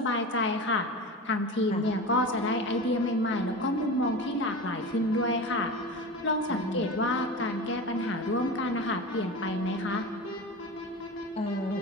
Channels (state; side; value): normal; both; correlation 0.29